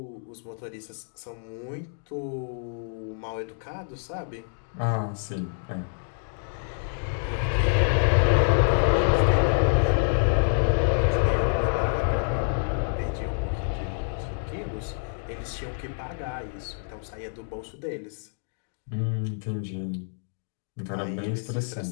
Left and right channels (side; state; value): right; silent; digital silence